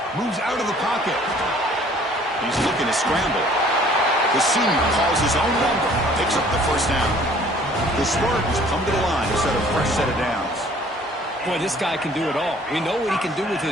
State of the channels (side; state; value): both; normal; correlation 0.55